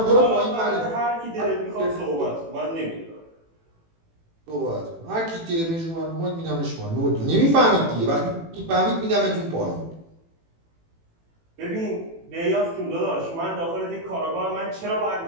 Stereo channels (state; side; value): late; left; 18 ms